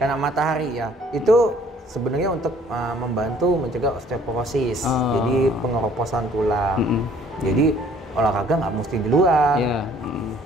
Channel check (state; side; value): normal; both; correlation 0.57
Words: matahari ya. Itu sebenarnya untuk membantu mencegah osteoporosis, jadi pengeroposan tulang. Jadi olahraga nggak mesti di luar.